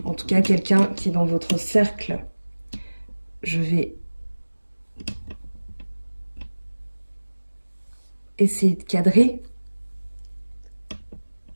En tout cas, quelqu'un qui est dans votre cercle. Je vais essayer de cadrer.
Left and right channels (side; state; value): both; inverted; correlation -1.00